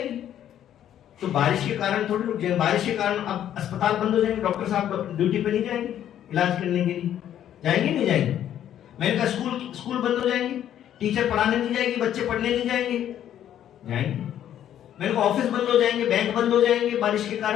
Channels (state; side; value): quieter; right; 10.8 dB